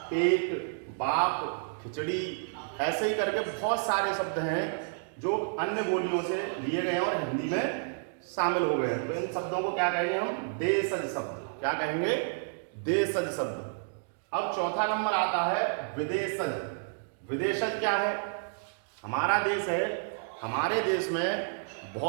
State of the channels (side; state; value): left; silent; digital silence